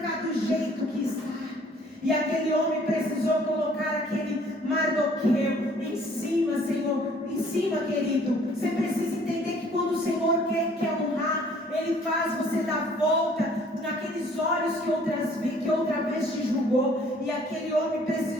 do jeito que está. E aquele homem precisou colocar aquele Mardoqueu em cima, Senhor, em cima, querido. Você precisa entender que quando o Senhor quer honrar, Ele faz você dar volta naqueles olhos que outra vez te julgou. E aquele homem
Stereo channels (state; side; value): normal; both; correlation 0.57